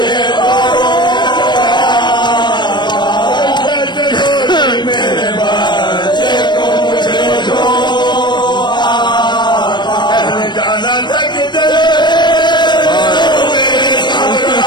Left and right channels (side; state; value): right; late; 0.22 ms